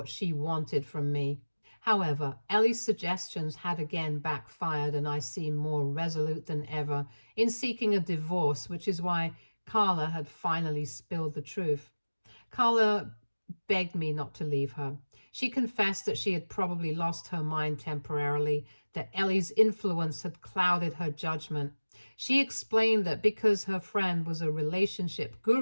she wanted from me. However, Elle's suggestions had again backfired, and I seemed more resolute than ever in seeking a divorce, which is why Carla had finally spilled the truth. Carla begged me not to leave her. She confessed that she had probably lost her mind temporarily, that Elle's influence had clouded her judgment. She explained that because her friend was a relationship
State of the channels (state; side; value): inverted; both; correlation -1.00